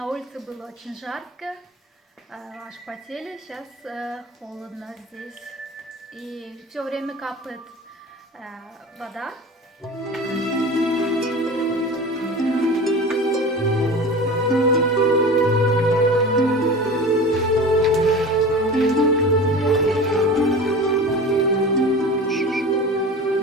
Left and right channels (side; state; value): both; normal; correlation 0.34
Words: улице было очень жарко, аж потели. Сейчас холодно здесь. И все время капает вода.